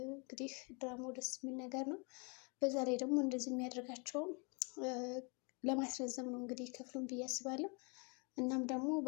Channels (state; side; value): quieter; right; 33.6 dB